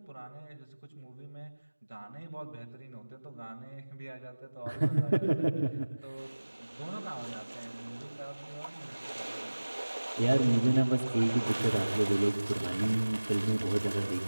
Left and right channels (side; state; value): both; inverted; correlation -1.00